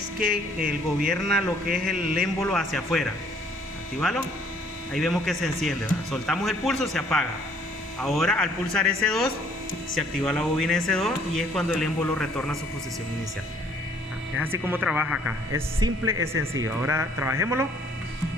que él gobierna lo que es el émbolo hacia afuera. Actívalo. Ahí vemos que se enciende, ¿verdad? Soltamos el pulso, se apaga. Ahora al pulsar S2 se activa la bobina S2 y es cuando el émbolo retorna a su posición inicial. Es así como trabaja acá. Es simple, es sencillo. Ahora trabajémoslo.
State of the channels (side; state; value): both; normal; correlation 0.61